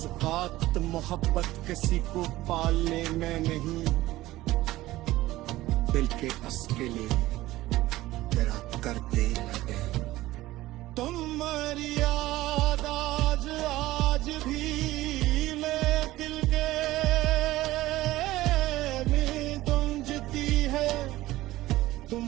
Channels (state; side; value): quieter; left; 16.9 dB